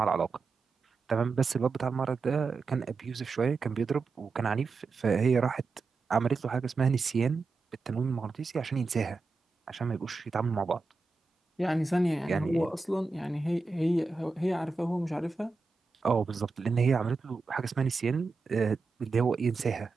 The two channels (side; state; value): left; quieter; 4.1 dB